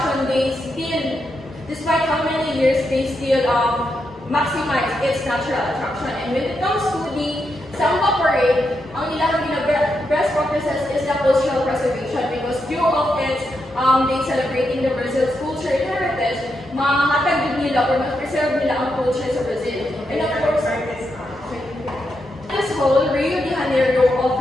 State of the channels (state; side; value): normal; both; correlation 0.83